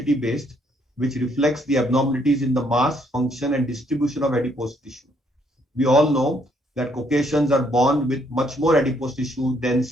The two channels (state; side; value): normal; both; correlation 0.70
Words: based, which reflects the abnormalities in the mass, function, and distribution of adipose tissue. We all know that Caucasians are born with much more adipose tissue than,